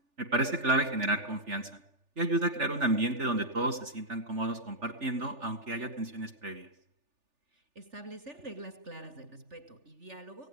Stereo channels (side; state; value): left; late; 3.4 ms